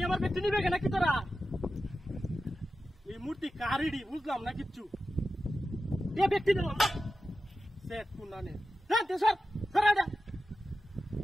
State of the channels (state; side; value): normal; both; correlation 0.92